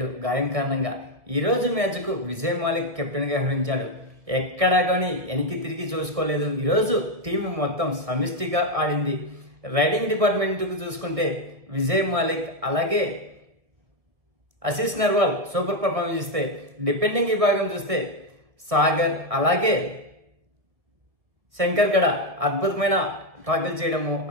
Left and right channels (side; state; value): left; late; 1.8 ms